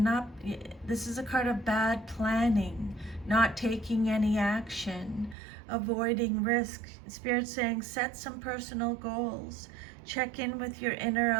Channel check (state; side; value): drops out; left; at 5.4 s